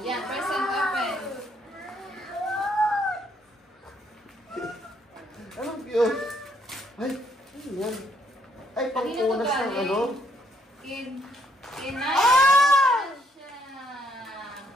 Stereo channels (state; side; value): normal; both; correlation 0.70